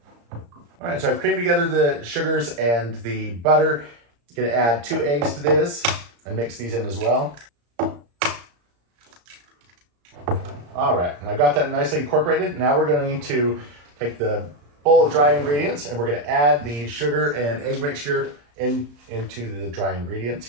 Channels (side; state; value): left; late; 34 ms